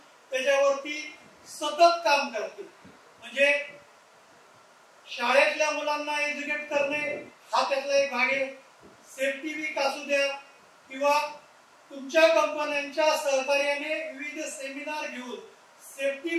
त्याच्यावरती सतत काम करते. म्हणजे शाळेतल्या मुलांना एज्युकेट करणे हा त्यातला एक भाग आहे. सेफ्टी वीक असू द्या किंवा तुमच्या कंपन्यांच्या सहकार्याने विविध सेमिनार घेऊन सेफ्टी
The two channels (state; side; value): identical; both; correlation 1.00